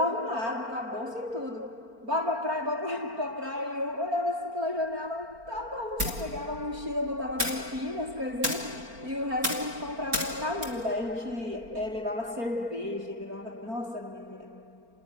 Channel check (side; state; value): left; late; 4.4 ms